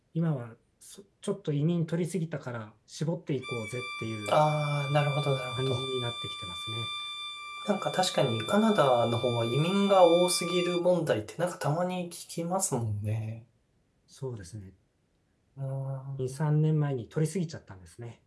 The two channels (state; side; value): identical; both; correlation 1.00